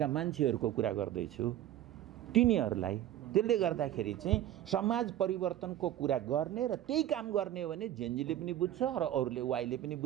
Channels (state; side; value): quieter; left; 12.5 dB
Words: मान्छेहरूको कुरा गर्दैछु, तिनीहरूलाई। त्यसले गर्दाखेरि चाहिँ समाज परिवर्तनको कुरा गर्ने र त्यही काम गर्ने हो भने जेएनजीले पनि बुझ्छ र अरूले, वाइले पनि